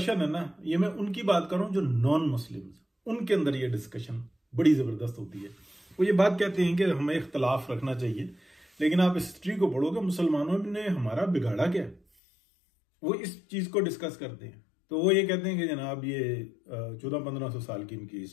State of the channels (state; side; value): drops out; right; at 12.0 s